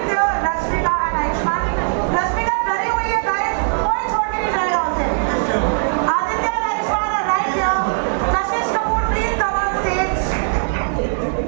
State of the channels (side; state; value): left; silent; 63 dB below the other